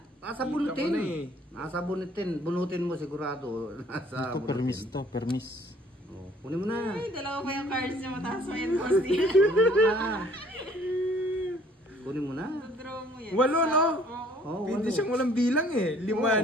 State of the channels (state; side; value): normal; both; correlation 0.58